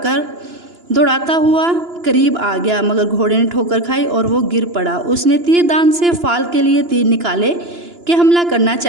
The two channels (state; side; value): late; left; 2.9 ms